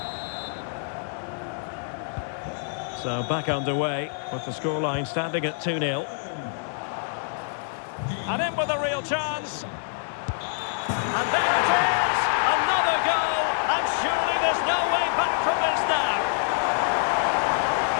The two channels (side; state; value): right; silent; digital silence